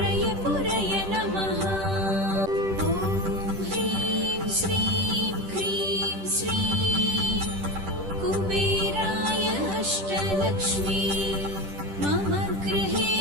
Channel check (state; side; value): late; left; 10 ms